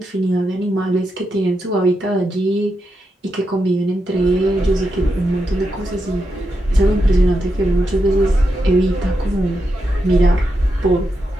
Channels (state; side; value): normal; both; correlation 0.85